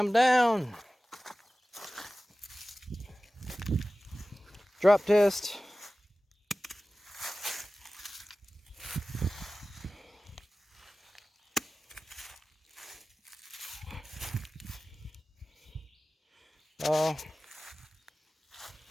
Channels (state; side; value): normal; both; correlation 0.96